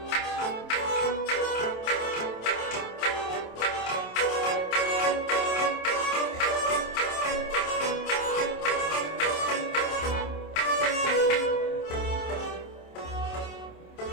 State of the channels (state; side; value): late; right; 27 ms